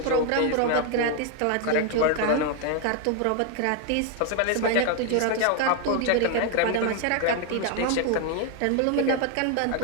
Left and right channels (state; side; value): different; both; correlation 0.01